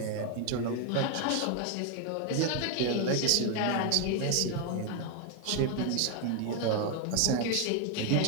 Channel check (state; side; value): different; both; correlation 0.01